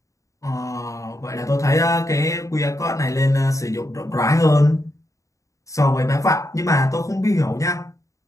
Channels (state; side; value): late; right; 0.16 ms